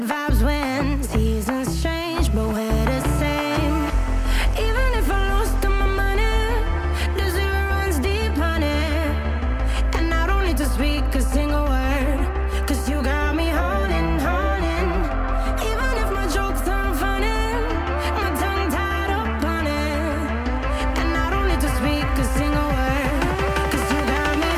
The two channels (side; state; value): both; identical; correlation 1.00